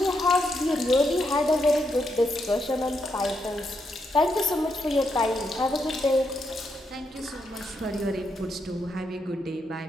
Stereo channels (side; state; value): both; normal; correlation 0.81